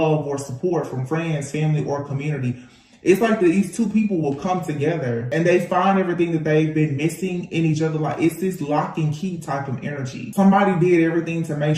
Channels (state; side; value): identical; both; correlation 1.00